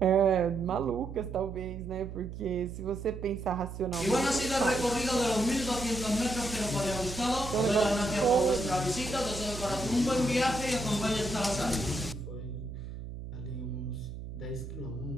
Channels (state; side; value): noise; right; hum, 10 dB below the sound